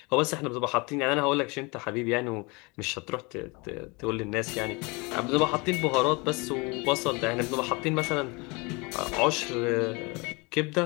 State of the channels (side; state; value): right; quieter; 27.7 dB